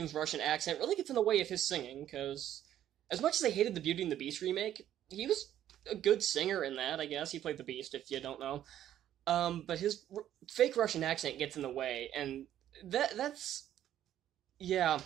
Russian accent really gets in the way of his singing, because as much as I hated the Beauty and the Beast remake, he was a good singer in that, I guess. He played the Beast, if you don't know. But his fake Russian accent gets in the way, and that's... Yeah.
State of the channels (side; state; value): left; quieter; 11.5 dB